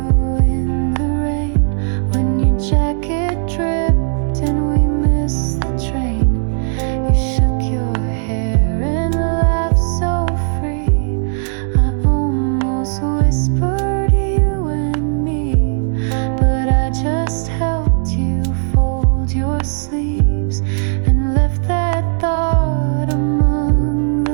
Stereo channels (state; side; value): silent; left; digital silence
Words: in the rain, when your jacket dripped and we missed the train. You shook your hair and laughed so free. I almost whispered you and me, but I just helped you fold your sleeves and left that thought among